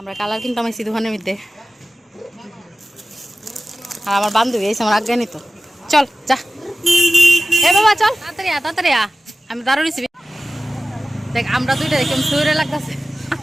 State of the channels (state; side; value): normal; both; correlation 0.95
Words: কালার কিন্তু আমি দোকানের মধ্যে, আর আমার বান্ধবী এসে আমার আজ্ঞা নিত। চল যা এ বাবা চল তাড়াতাড়ি তাড়াতাড়ি আমি দাঁড়ো রিসিবি। দেখ আমরা দুইটা দেখে শরীরে লাগতেছে,